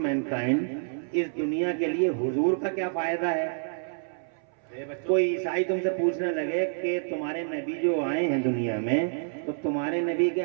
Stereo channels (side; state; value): left; silent; 59 dB below the other